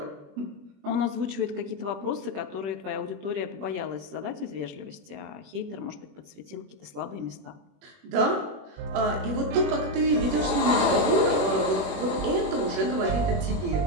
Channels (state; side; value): late; left; 21 ms